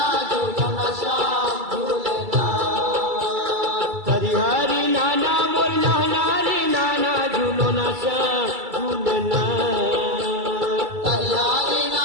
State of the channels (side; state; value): left; late; 2.3 ms